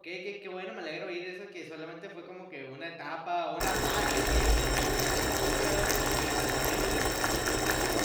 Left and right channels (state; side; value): identical; both; correlation 1.00